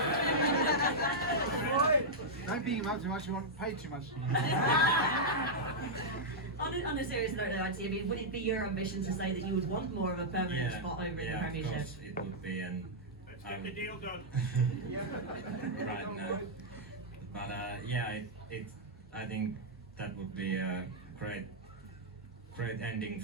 Don't beat him up too much, you won't pay too much. On a serious note, though, Antti, I mean, would it be your ambition to say that you would want more of a permanent spot over in the Premiership? Yeah, of course it would be, and let's get the deal done. Right now. But yeah, I think that would be a great ending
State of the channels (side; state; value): both; normal; correlation -0.07